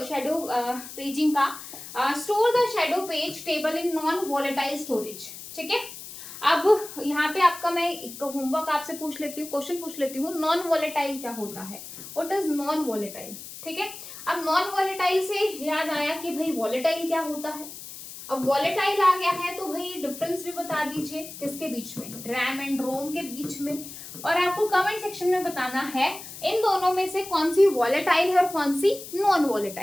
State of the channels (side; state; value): left; noise; hiss, 13 dB below the sound